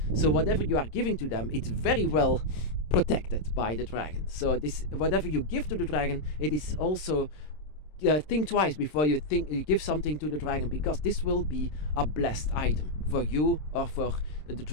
So whatever you are giving to them, it's very well protected by the dragon. So whatever you give to the dragon, it is also think twice before you give something to the dragon, because this will be a blessed item for you or for the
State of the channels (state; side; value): late; right; 26 ms